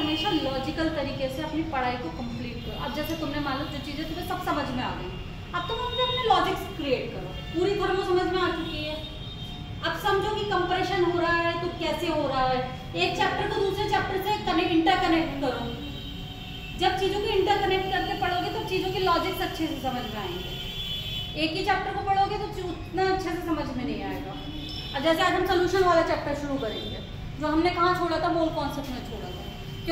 लॉजिकल तरीके से अपनी पढ़ाई को कंप्लीट करो। अब जैसे तुमने मान लो जो चीज़ें तुम्हें सब समझ में आ गई, अब तुम अपने लॉजिक्स क्रिएट करो। पूरी थर्मो समझ में आ चुकी है, अब समझो कि कंप्रेशन हो रहा है तो कैसे हो रहा है। एक चैप्टर को दूसरे चैप्टर से इंटरकनेक्ट करो। जब चीज़ों को इंटरकनेक्ट करके पढ़ोगे तो चीज़ों के लॉजिक्स अच्छे से समझ में आएंगे। एक ही चैप्टर को पढ़ोगे तो उतना अच्छे से समझ में नहीं आएगा। अब जैसे आज हम सोल्यूशन वाला चैप्टर शुरू करेंगे, जो हमने कहाँ छोड़ा था, मोल कॉन्सेप्ट में छोड़ा था।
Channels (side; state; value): both; identical; correlation 1.00